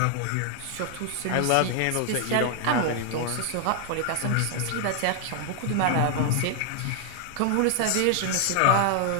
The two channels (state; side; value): different; both; correlation 0.00